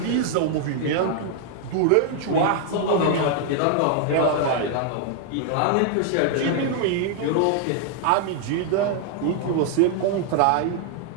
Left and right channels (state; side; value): different; both; correlation 0.00